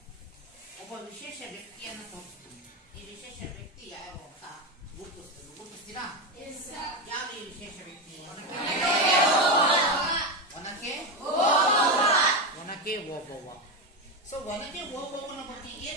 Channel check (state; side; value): normal; both; correlation 0.14